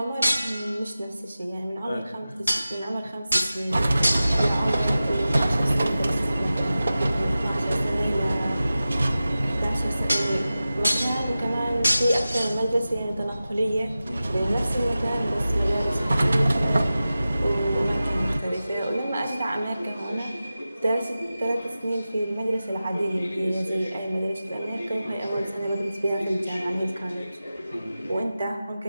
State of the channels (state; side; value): inverted; both; correlation -0.95